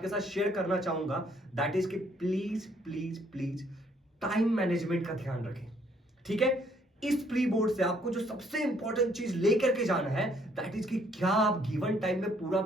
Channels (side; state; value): both; normal; correlation 0.66